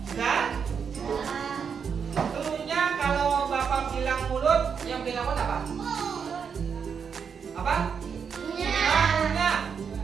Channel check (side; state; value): left; quieter; 6.6 dB